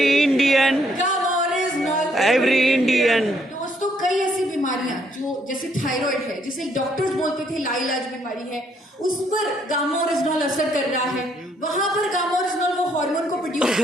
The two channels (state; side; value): normal; both; correlation 0.70